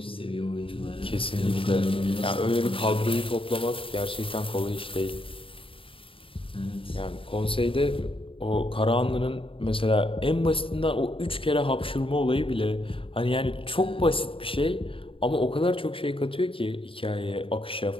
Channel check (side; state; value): right; late; 0.26 ms